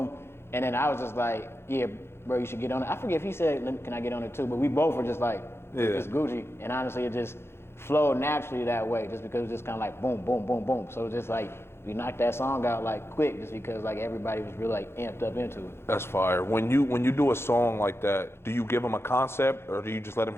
and then I was just like, yeah, bro, you should get on it. I forget if he said, can I get on it too? But we both were just like, it's Gucci. And honestly, it just flowed naturally that way, just because it was just kind of like boom, boom, boom, boom. So just like we knocked that song out like quick, just because like everybody was really like amped up into it. That's fire. When you do a song like that, do you give them a concept, or do you just let them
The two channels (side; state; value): right; late; 0.12 ms